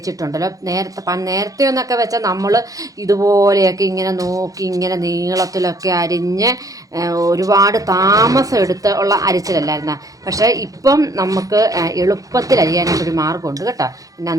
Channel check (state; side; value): late; left; 0.17 ms